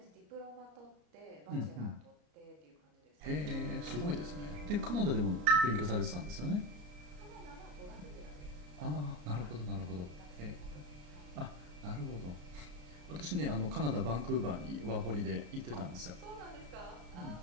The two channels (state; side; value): late; left; 33 ms